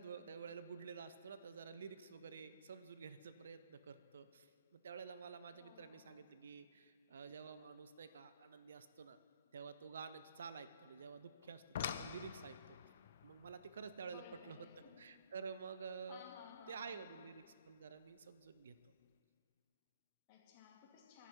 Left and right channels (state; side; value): inverted; both; correlation -0.64